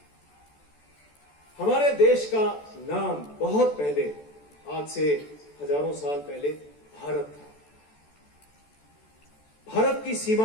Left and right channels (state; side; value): late; right; 14 ms